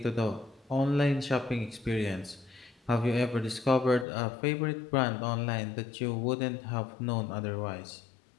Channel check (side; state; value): right; drops out; at 4.0 s